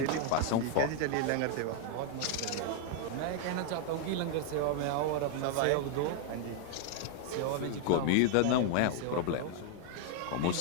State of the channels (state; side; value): different; both; correlation 0.00